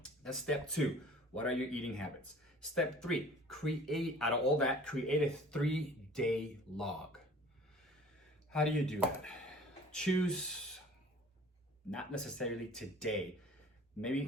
That's step 2. What are your eating habits? Step 3, create a 3-day log. How do you do that? Choose, not necessarily today,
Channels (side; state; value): both; normal; correlation 0.47